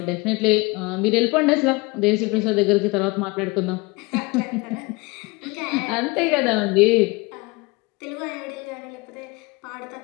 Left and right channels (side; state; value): right; quieter; 25.2 dB